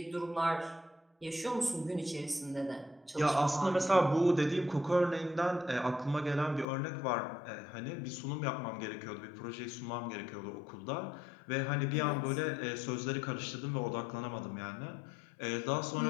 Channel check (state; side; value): drops out; right; at 6.7 s